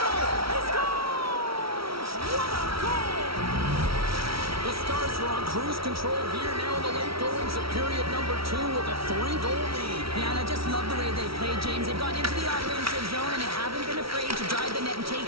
He scores! What a goal! The Stars are on cruise control here now in the late goings of period number 2 with a 3-goal lead. Yeah, and I just love the way they play, James. They've gone into the offensive zone and they haven't been afraid to drive the net and take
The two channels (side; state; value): left; late; 0.75 ms